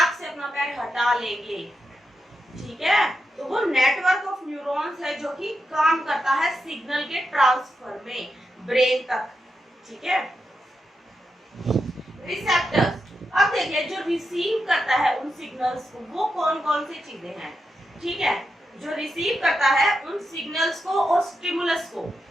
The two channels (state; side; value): normal; both; correlation 0.86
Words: से अपना पैर हटा लेंगे, ठीक है। तो वो नेटवर्क ऑफ न्यूरॉन्स है जो कि काम करता है सिग्नल के ट्रांसफर में ब्रेन तक, ठीक है। रिसेप्टर्स, अब देखिए जो रिसीव करता है उन सिग्नल्स को, वो कौन कौन सी चीजें हैं, ठीक है। जो रिसीव करता है उन सिग्नल्स को और स्टिमुलस को,